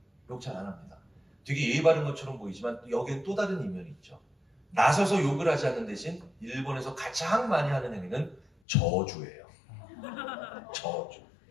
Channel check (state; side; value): drops out; right; at 8.5 s